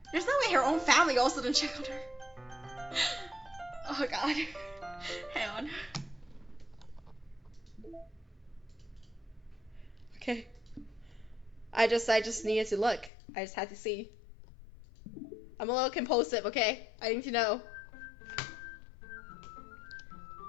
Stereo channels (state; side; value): drops out; right; at 13.1 s